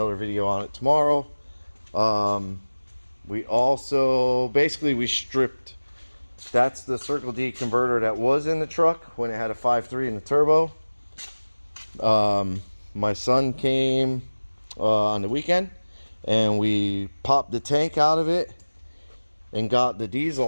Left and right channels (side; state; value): both; inverted; correlation -1.00